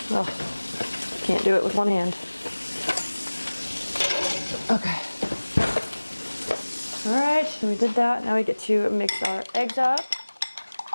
Oh, can't do it with one hand. Okay. All right, so we did that. Now we get to mix our eggs up.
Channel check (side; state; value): both; inverted; correlation -1.00